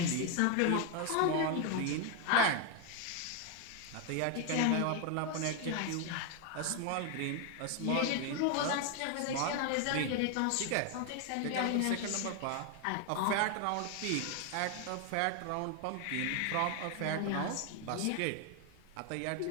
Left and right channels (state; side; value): different; both; correlation 0.01